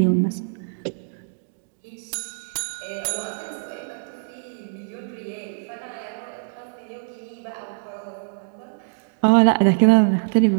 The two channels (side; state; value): left; silent; digital silence